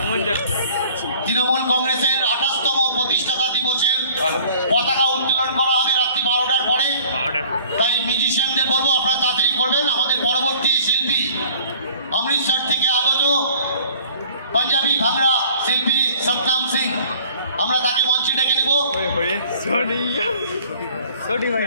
তৃণমূল কংগ্রেসের 28তম প্রতিষ্ঠাতা দিবসের পতাকা উত্তোলন করা হবে রাত্রি 12টার পরে। তাই মিউজিশিয়ানদের বলবো আপনারা তাড়াতাড়ি করবেন। আমাদের পরবর্তী শিল্পী অমৃতসর থেকে আগত পাঞ্জাবি ভাংড়া শিল্পী সতনাম সিং, আমরা তাকে মঞ্চে ডেকে নেব।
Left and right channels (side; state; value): both; inverted; correlation -0.51